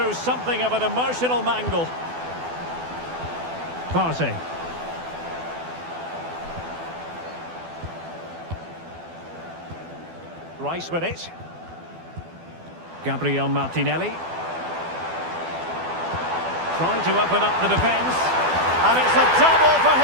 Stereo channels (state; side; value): late; left; 12 ms